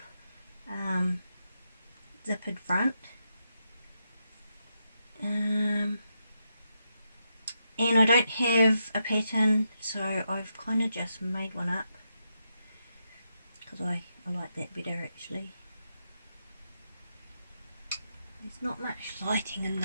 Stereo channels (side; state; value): both; inverted; correlation -0.84